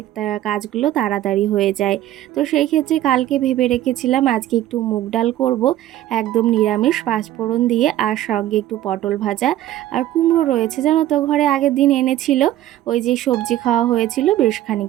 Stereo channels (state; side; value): quieter; left; 13.6 dB